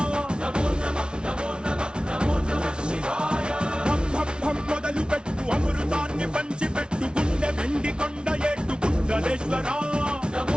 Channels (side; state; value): left; late; 0.056 ms